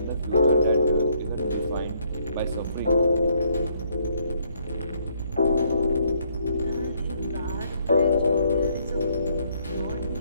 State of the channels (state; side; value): inverted; both; correlation -0.69